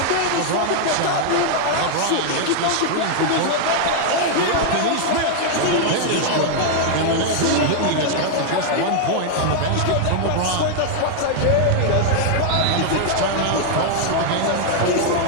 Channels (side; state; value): both; different; correlation 0.00